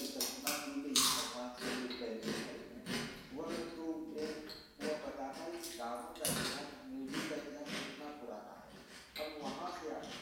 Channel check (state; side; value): identical; both; correlation 1.00